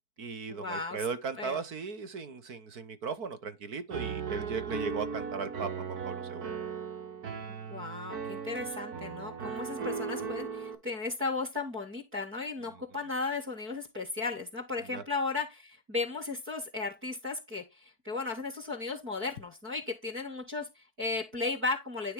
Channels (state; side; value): late; left; 4.5 ms